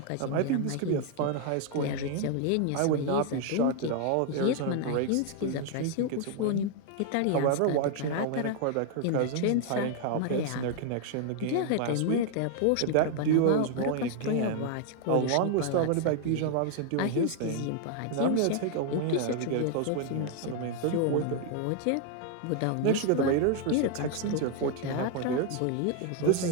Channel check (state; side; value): different; both; correlation 0.00